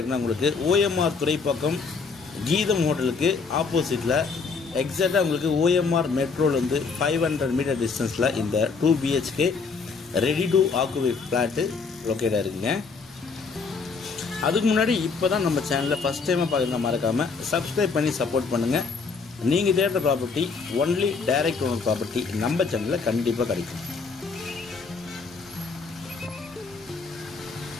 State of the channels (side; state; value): right; quieter; 4.8 dB